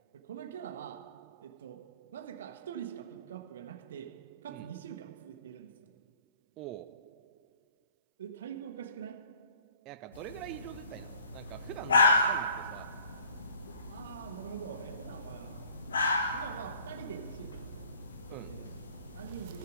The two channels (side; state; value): both; inverted; correlation -0.55